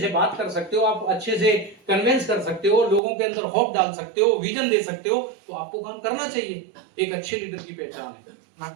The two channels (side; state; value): left; drops out; at 3.0 s